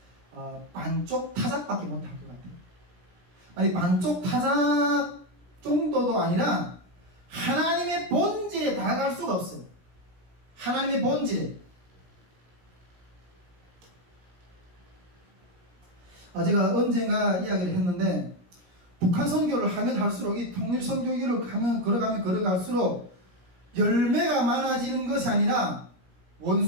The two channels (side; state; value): left; late; 17 ms